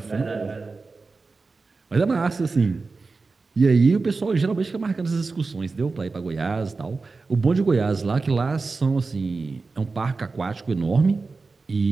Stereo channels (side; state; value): left; quieter; 4.0 dB